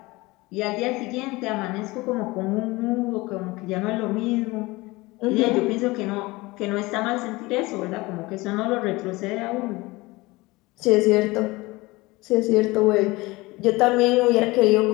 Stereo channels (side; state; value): right; quieter; 21.9 dB